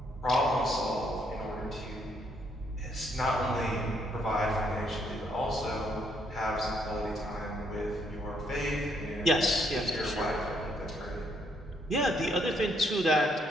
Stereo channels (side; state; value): both; normal; correlation 0.72